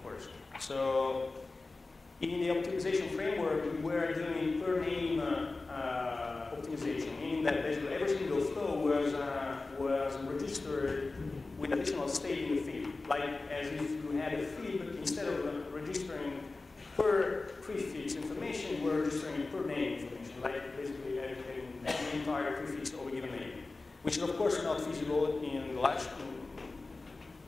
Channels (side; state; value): right; quieter; 3.5 dB